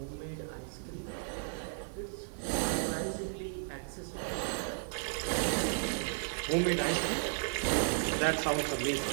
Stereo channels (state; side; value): silent; left; digital silence